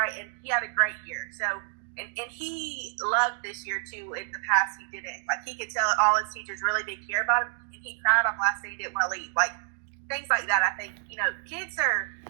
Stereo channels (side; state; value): left; silent; digital silence